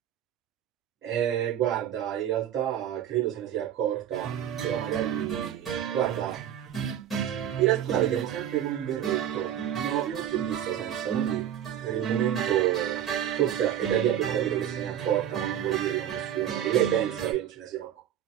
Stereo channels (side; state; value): left; quieter; 10.4 dB